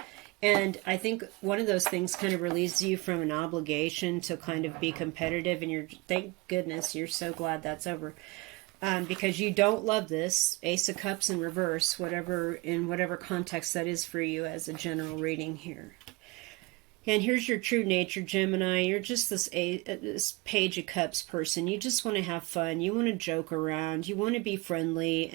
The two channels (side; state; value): left; quieter; 24.0 dB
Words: And I think one of those things kind of relieves you from an obligation to kind of be competitive, and thank goodness, you're so glad that's over. Because you don't love this. Ace of Cups in reverse, in whatever context that is for you as a general reading here. And here's your true nature, Gemini. You're just this Page of Cups person. You just want to have fun. You want to joke around. You want to be friendly